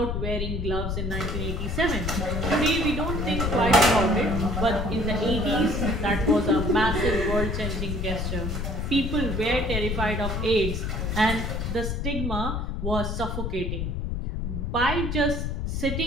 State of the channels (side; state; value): left; noise; rumble, 2 dB below the sound